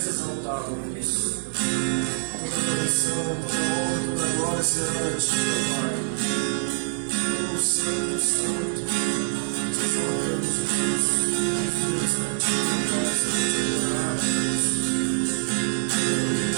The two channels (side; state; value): left; silent; digital silence